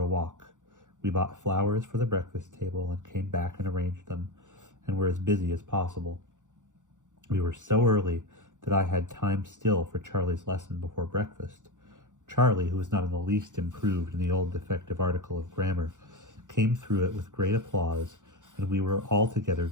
walk. We bought flowers for the breakfast table, and came back and arranged them, and were as busy as possible. We were so early that I had time still for Charlie's lesson before breakfast. Charlie, who was not in the least improved in the old defective article of grammar, came through it with great applause, and we were altogether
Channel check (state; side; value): late; left; 0.86 ms